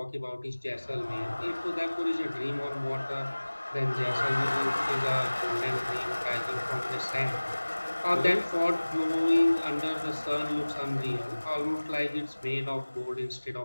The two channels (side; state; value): both; inverted; correlation -1.00